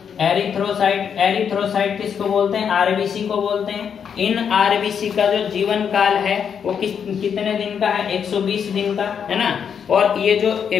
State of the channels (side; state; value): right; quieter; 7.4 dB